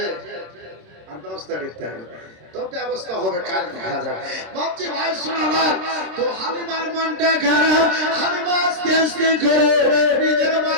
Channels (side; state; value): left; late; 26 ms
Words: আর ব্যবস্থা করতে হবে। তো ব্যবস্থা হবে, কাল দেখা যাবে। ভাবছি ভাই শোনালাম তো হালিমার মনটা খারাপ। হালিমা আস্তে আস্তে করে নিজের